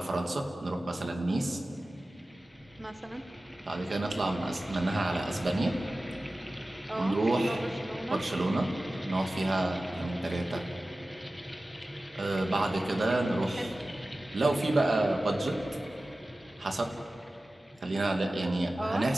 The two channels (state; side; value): normal; both; correlation 0.96